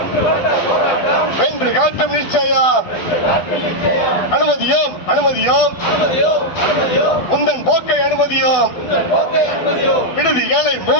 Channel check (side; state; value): right; late; 12 ms